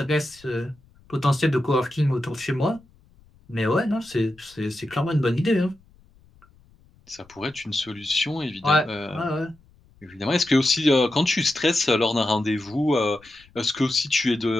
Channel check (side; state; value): left; noise; rumble, 29 dB below the sound